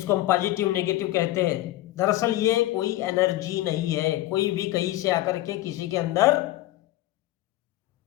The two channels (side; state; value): right; quieter; 16.2 dB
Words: हम पॉजिटिव नेगेटिव कहते हैं। दरअसल ये कोई एनर्जी नहीं है, कोई भी कहीं से आकर के किसी के अंदर